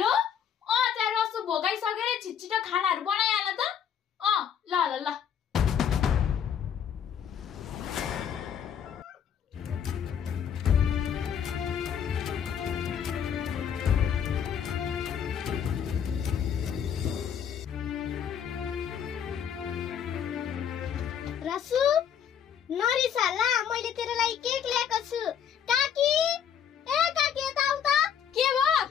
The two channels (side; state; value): right; quieter; 8.4 dB